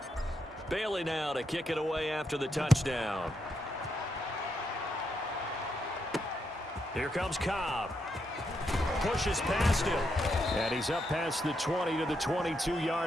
Bailey now to kick it away after the touchdown. Here comes Cobb. Pushes past him. And he's up past the 20 to the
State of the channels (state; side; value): normal; both; correlation 0.81